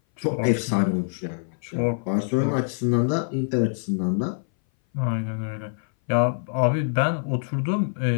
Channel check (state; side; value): silent; right; 59 dB below the other